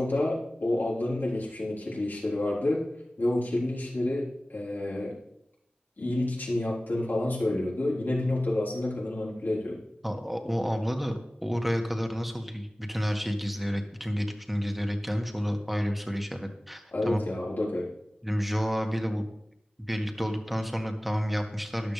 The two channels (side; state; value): both; normal; correlation 0.97